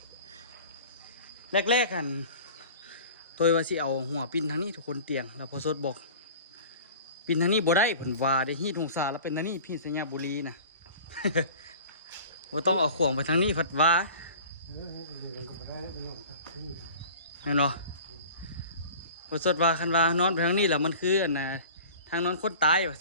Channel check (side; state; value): both; inverted; correlation -0.41